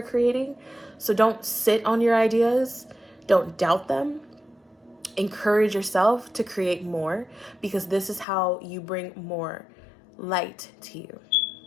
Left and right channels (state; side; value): drops out; right; at 8.2 s